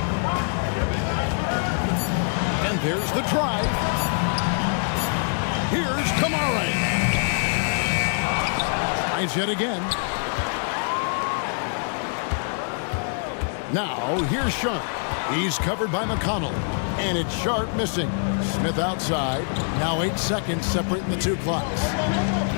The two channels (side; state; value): right; silent; 61 dB below the other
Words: And there's the drive. Here's Kamare. Tries yet again. Now, here's Sharp. He's covered by McConnell. And it's Sharp missing. Smith outside. Now 8 seconds separating the two clocks.